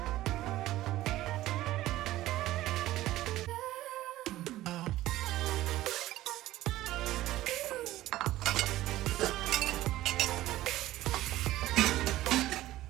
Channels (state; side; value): quieter; left; 15.5 dB